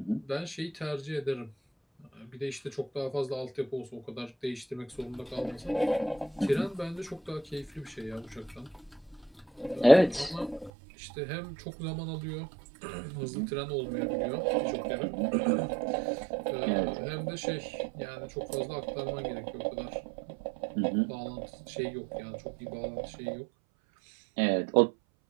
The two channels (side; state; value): left; drops out; at 10.7 s